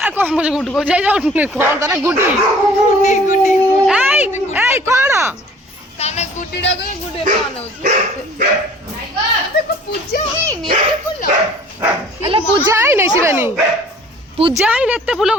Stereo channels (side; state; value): both; normal; correlation 0.51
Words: कौन मुझे गुड्डू को जाई जाओ कौन तारा गुड्डी गुड्डी ए कौन ताने गुड्डीडा को गुड्डे पान होची देखो पूजा है नी एते फूल अल्ला पूजा है नहीं शिवानी पूजा है नहीं एते फूल